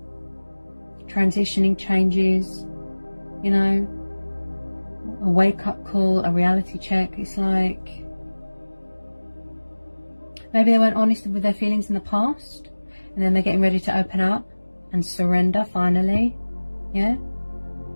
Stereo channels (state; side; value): inverted; both; correlation -1.00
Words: Transitioning changes. You know. A wake-up call, a reality check. It's like maybe they weren't honest with their feelings in the past, and then they're getting ready to open up and surrender finally. Yeah,